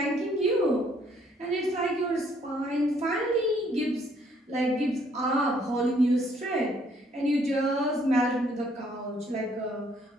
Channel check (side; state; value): both; normal; correlation 0.66